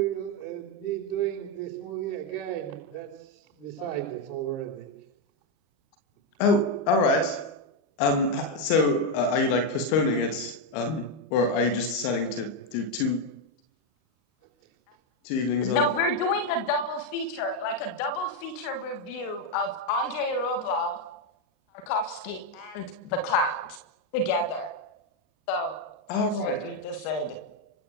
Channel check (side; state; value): right; late; 38 ms